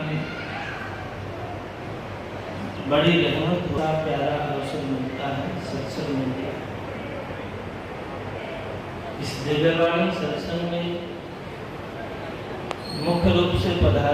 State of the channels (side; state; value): both; identical; correlation 1.00